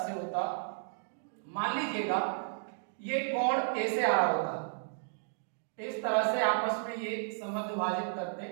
होता, मान लीजिएगा ये कोण A से आ रहा होता, इस तरह से आपस में ये समद्विभाजित विभाजित करते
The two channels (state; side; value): silent; left; digital silence